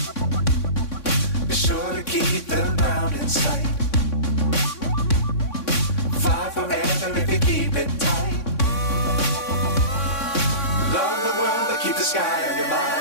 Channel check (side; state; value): right; late; 3.6 ms